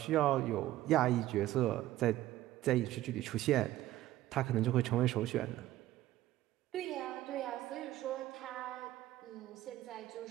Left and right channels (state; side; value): quieter; left; 15.0 dB